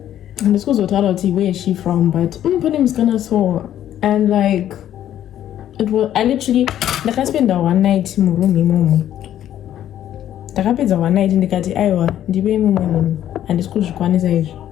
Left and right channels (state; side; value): quieter; right; 11.4 dB